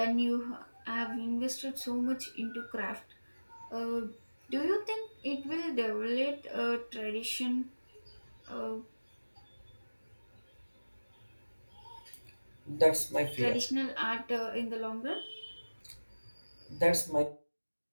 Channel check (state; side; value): inverted; both; correlation -1.00